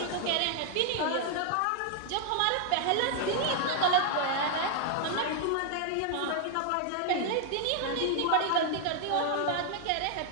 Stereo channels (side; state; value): both; different; correlation 0.00